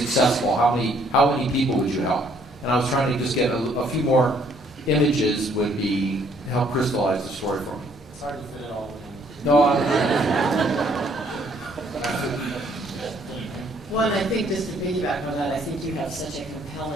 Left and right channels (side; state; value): both; normal; correlation 0.64